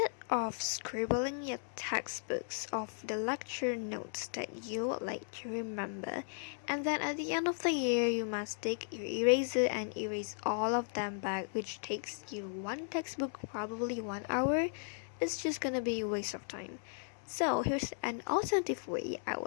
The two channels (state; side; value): silent; right; digital silence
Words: of scribbling your textbooks of the lecture notes that you would like to remember, and then at the end of the year you must take your eraser and erase all of them back, which takes you one textbook probably 1 hour, it's just gonna be a waste of time. So here's an alternative way I